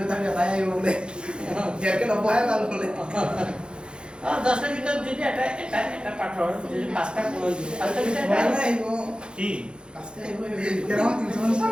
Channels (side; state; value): left; late; 0.052 ms